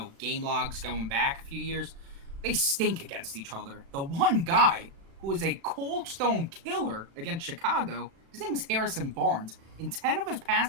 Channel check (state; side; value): late; left; 36 ms